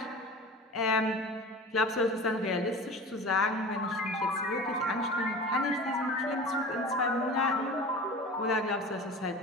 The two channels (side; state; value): both; normal; correlation 0.36